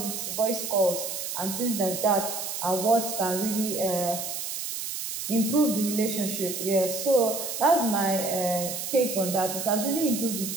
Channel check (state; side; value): noise; right; hiss, 5 dB below the sound